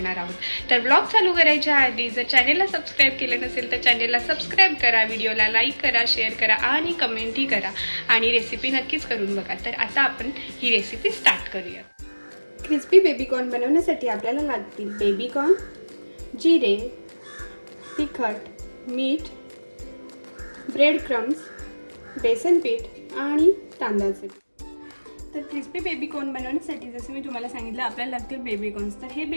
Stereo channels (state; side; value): inverted; both; correlation -1.00